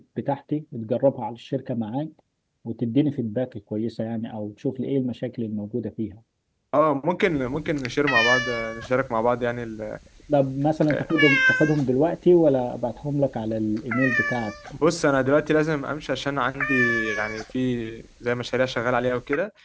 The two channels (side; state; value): both; identical; correlation 1.00